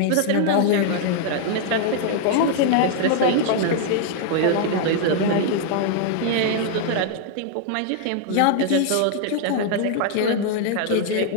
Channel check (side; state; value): both; different; correlation 0.00